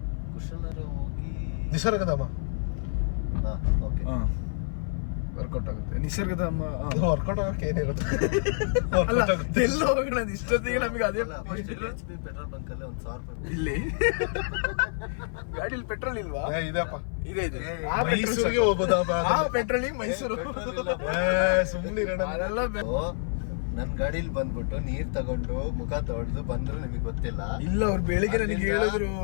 ನಿಸರ್ಗಧಾಮ ವರ್ಕೌಟ್ ಆಗುತ್ತೆ. ನಿಸರ್ಗಧಾಮ ವರ್ಕೌಟ್ ಆಗೋಕೆ ಏನಿರುತ್ತೆ ಅಲ್ಲ, ಎಲ್ಲೋ ಹೋಗೋಣ ಇಷ್ಟೊತ್ತಿಗೆ ನಮಗೆ ಅದೇ ಪೆಟ್ರೋಲ್ ಬಂಕ್ ಅಲ್ಲಿ 1,000 ರೂಪಾಯಿ ಇಲ್ಲಿ ಗಾಡಿಲಿ ಪೆಟ್ರೋಲ್ ಇಲ್ವಾ? ಇದೆಯಪ್ಪ, ಇದೆ ಮೈಸೂರಿಗೆ ಹೋಗೋದಪ್ಪ. ಆ ಪೆಟ್ರೋಲಿಗೆ ಮೈಸೂರು ಸುಮ್ಮನೆ ಅದೆಲ್ಲ ನನ್ ಗಾಡಿಲಿ ಬಂದ್ಬಿಟ್ಟು ನೀರ್ ತಗೊಂಡು ಮುಖ ತೊಳೆದು ಬಂದ್ರು ನಿಮಗೆ ಗೊತ್ತಿಲ್ಲ. ಇಲ್ಲ, ಅವ್ರು ಬೆಳಿಗ್ಗೆ ನನಗೆ ಹೇಳಿದ್ರು.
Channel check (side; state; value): right; silent; 56 dB below the other